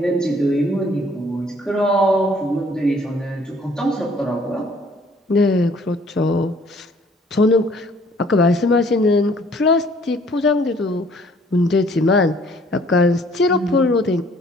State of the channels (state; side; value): normal; both; correlation 0.58